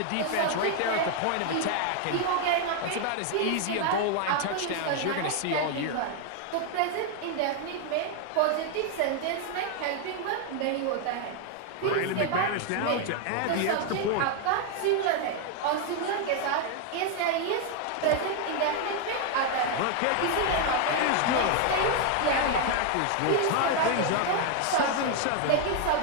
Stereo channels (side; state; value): both; different; correlation 0.00